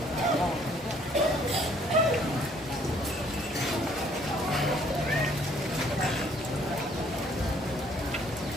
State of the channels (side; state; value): both; normal; correlation 0.62